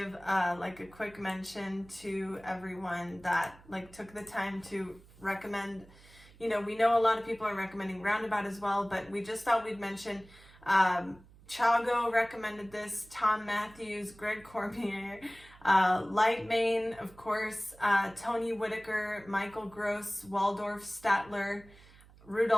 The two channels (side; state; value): right; noise; hum, 24 dB below the sound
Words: like a quick mention to everyone that took the time to recommend. You know, we know a lot of people are recommending Roundabout as well, but we just thought we'd mention Chago recommended this, Tom Matthews, Greg Cormier, Lightmane, of course, Tony Whitaker, Michael Gross, Waldorf Statler,